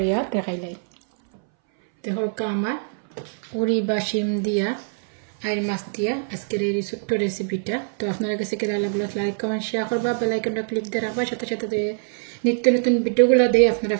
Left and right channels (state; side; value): silent; left; 61 dB below the other